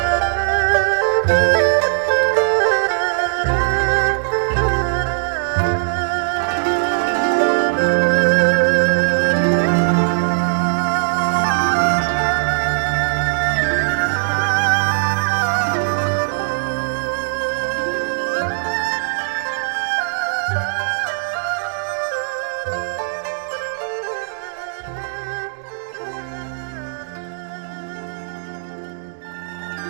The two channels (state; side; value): silent; left; digital silence